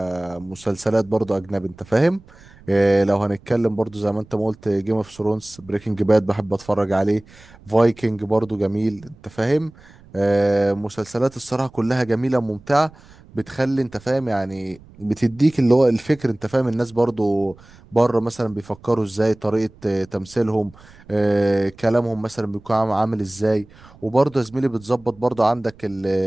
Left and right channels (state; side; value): noise; right; rumble, 24 dB below the sound